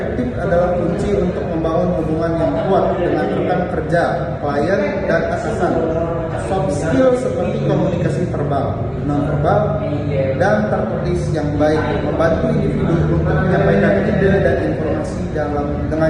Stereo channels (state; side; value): identical; both; correlation 1.00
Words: adalah kunci untuk membangun hubungan yang kuat dengan rekan kerja, klien, dan atasan. Soft skill seperti komunikasi verbal, non-verbal, dan tertulis yang baik membantu individu untuk menyampaikan ide dan informasi dengan